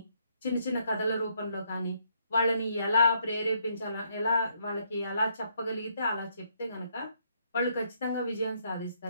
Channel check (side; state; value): both; inverted; correlation -0.72